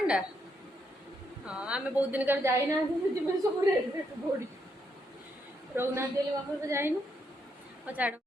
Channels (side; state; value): both; normal; correlation 0.77